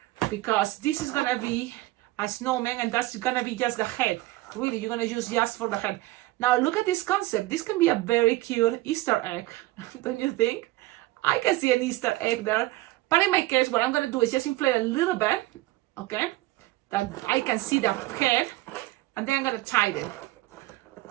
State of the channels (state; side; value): quieter; left; 18.5 dB